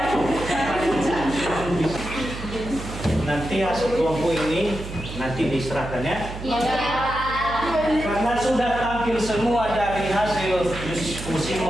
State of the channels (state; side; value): noise; right; hum, 9 dB below the sound